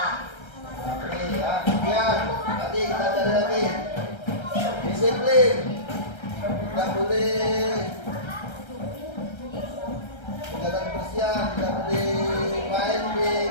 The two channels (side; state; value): right; late; 1.3 ms